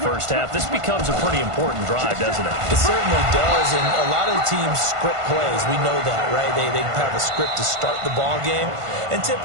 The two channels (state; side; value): late; left; 1.5 ms